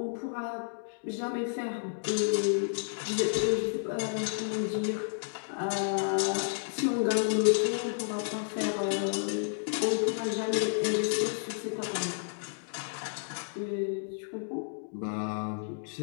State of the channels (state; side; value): silent; right; digital silence